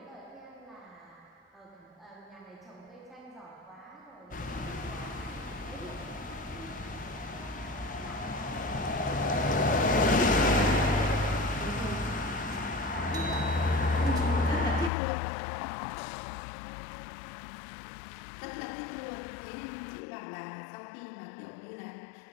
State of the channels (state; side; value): drops out; right; at 14.9 s